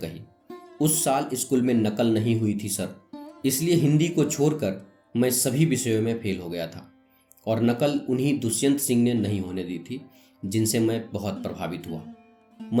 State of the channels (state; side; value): identical; both; correlation 1.00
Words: उस साल स्कूल में नकल नहीं हुई थी सर, इसलिए हिंदी को छोड़कर मैं सभी विषयों में फेल हो गया था, और नकल उन्हीं दुष्यंत सिंह ने नहीं होने दी थी, जिनसे मैं बहुत प्रभावित हुआ।